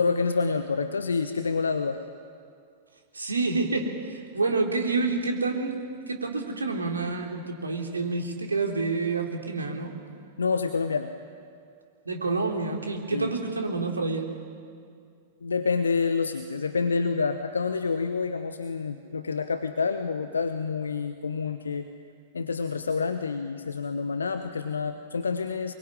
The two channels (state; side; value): inverted; both; correlation -0.70